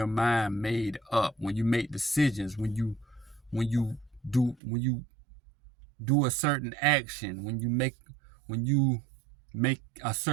mind made up when you make decisions, when you do a certain action, when you make a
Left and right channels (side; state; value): left; drops out; at 4.5 s